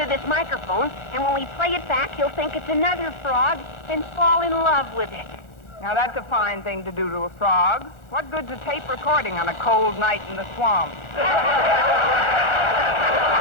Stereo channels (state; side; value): late; right; 1.4 ms